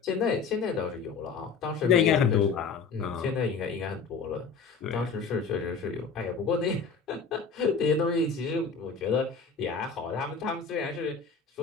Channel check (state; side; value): quieter; right; 5.3 dB